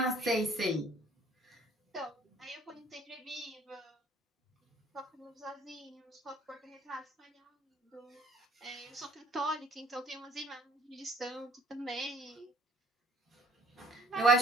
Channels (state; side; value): normal; both; correlation 0.56